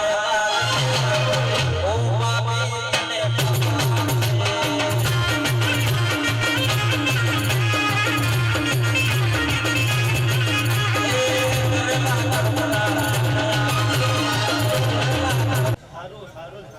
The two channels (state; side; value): identical; both; correlation 1.00